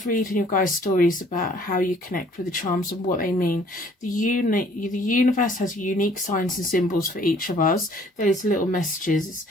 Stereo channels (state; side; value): normal; both; correlation 0.57